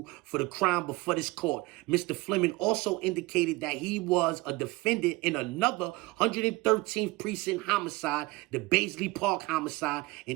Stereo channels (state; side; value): quieter; left; 22.1 dB